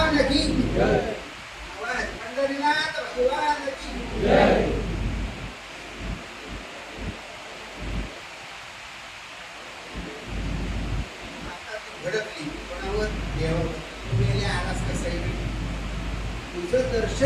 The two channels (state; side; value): identical; both; correlation 1.00